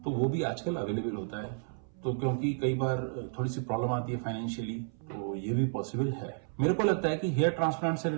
तो वो भी आजकल अवेलेबल होता है, तो क्योंकि कई बार थोड़ी सी प्रॉब्लम आती है फाइनेंशियली, तो ये भी पॉसिबल है। मेरे को लगता है कि हेयर ट्रांसप्लांट से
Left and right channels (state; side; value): silent; left; 57 dB below the other